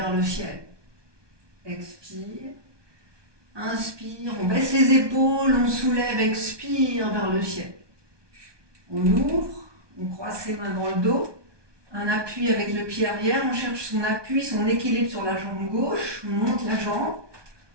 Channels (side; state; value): left; late; 1.2 ms